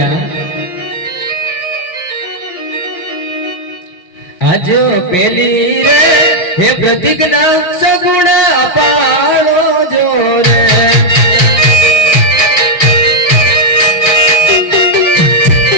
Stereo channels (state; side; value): late; right; 5.6 ms